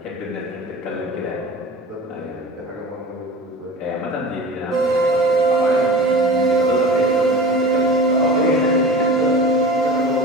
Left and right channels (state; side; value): normal; both; correlation 0.35